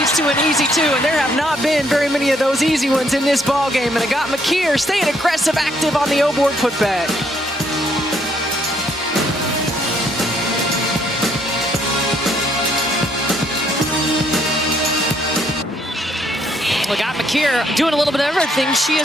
to an easy 2, and there have not been very many of those easy ones in this ball game. And Agat McKeer staying aggressive, active on the O-board putback. Agat McKeer doing a little bit of everything. She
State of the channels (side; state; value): both; normal; correlation 0.69